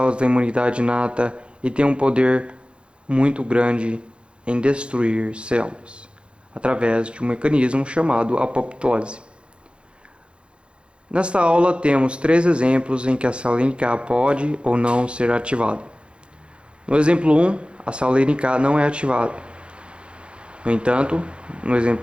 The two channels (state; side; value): late; left; 0.057 ms